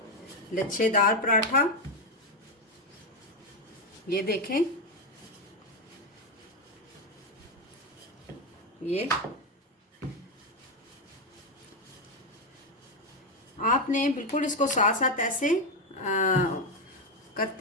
लच्छेदार पराठा। ये देखें ये आपने बिल्कुल इसको साथ साथ ऐसे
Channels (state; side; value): normal; both; correlation 0.08